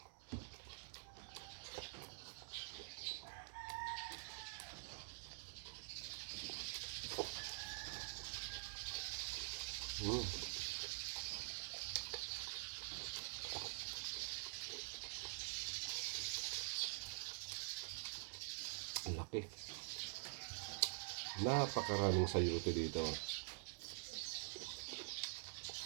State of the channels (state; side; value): silent; left; digital silence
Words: Laki. Napakaraming sayuti dito.